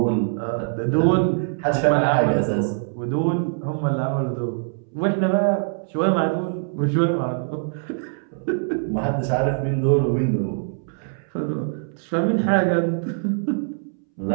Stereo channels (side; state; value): left; silent; 63 dB below the other